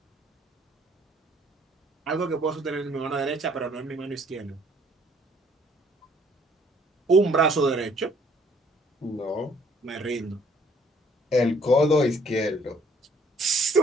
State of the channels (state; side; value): normal; both; correlation 0.62